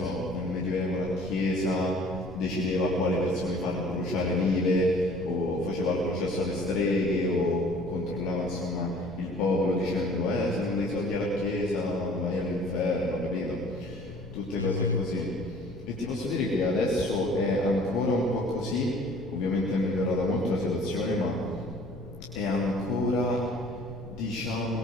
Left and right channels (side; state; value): left; noise; rumble, 16 dB below the sound